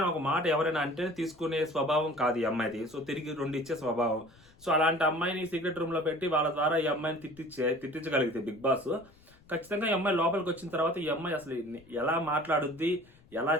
ఒక మాట ఎవరైనా అంటే తీసుకునే స్వభావం కాదు ఈ అమ్మాయిది. సో తిరిగి రెండు ఇచ్చే స్వభావం. సో అలాంటి అమ్మాయిని సీక్రెట్ రూమ్ లో పెట్టి వాళ్ళ ద్వారా ఈ అమ్మాయిని తిట్టించగలిగితే బిగ్ బాస్ ఖచ్చితంగా ఈ అమ్మాయి లోపలికి వచ్చిన తర్వాత ఈ అమ్మాయి అసలు ఎలా మాట్లాడుద్ది, ఎలా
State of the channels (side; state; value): left; noise; rumble, 27 dB below the sound